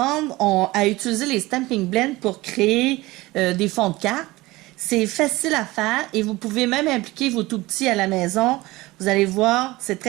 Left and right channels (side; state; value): left; quieter; 20.1 dB